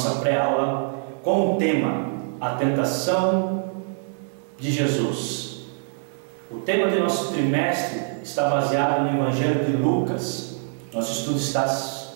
pré-aula, com o tema A Tentação de Jesus. O tema do nosso trimestre está baseado no Evangelho de Lucas. Nosso estudo está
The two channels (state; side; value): silent; left; digital silence